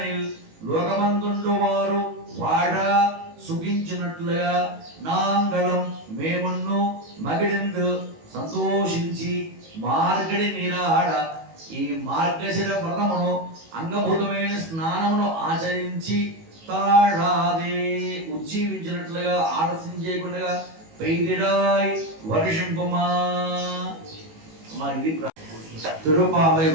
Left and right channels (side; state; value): left; late; 18 ms